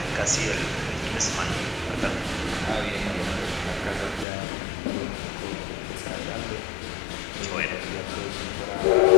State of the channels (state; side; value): drops out; right; at 4.2 s